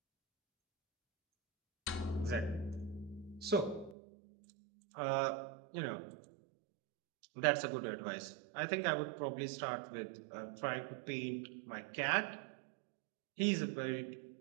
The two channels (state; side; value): drops out; left; at 4.0 s